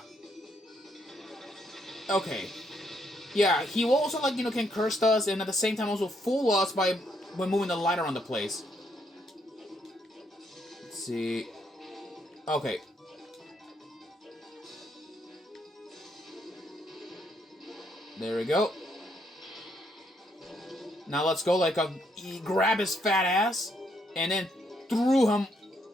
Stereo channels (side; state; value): both; normal; correlation 0.74